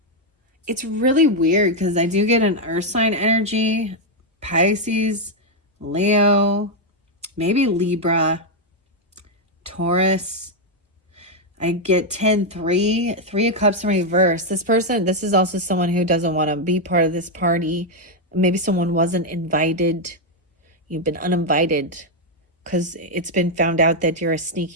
It's really weird because I do get an earth sign energy, Pisces, Leo, maybe Libra, Taurus. I get 10-3, 3 of Cups in reverse. This person, this is also someone who doesn't want to be part of this party. Maybe someone wasn't invited. You've been uninvited because it's been found out that you're a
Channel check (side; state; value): both; normal; correlation 0.01